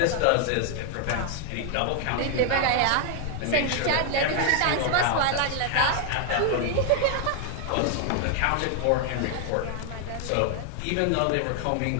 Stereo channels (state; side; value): different; both; correlation 0.00